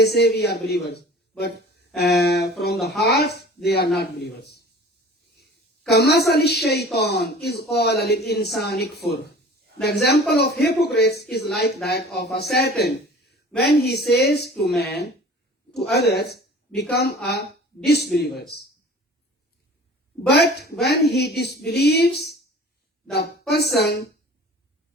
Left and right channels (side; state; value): both; normal; correlation 0.44